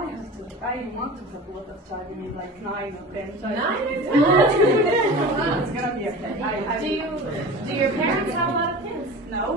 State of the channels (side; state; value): both; normal; correlation 0.35